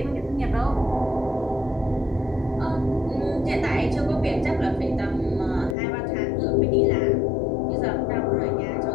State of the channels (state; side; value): drops out; right; at 5.8 s